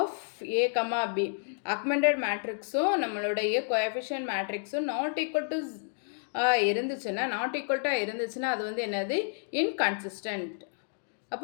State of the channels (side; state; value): right; silent; digital silence